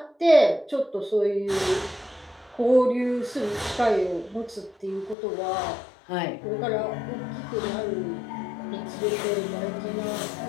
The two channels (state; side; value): drops out; right; at 5.2 s